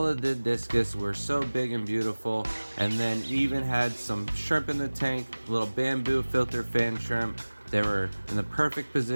of the Discus were so big and beautiful, and then even had some shrimp in the tank, little bamboo filter fan shrimp. They were in the perfect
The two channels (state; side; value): inverted; both; correlation -1.00